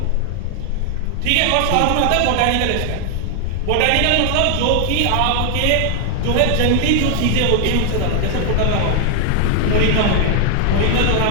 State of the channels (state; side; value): different; both; correlation 0.00